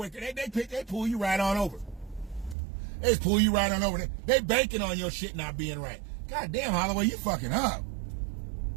they pull you right on over. They just pull you right on over. They banking on your shit not being right. God damn, Holloway, you fucking up.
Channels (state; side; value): drops out; left; at 2.6 s